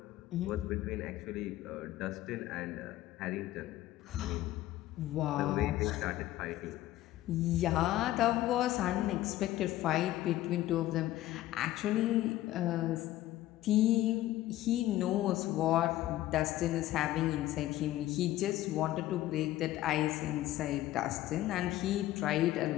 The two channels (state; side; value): quieter; right; 15.0 dB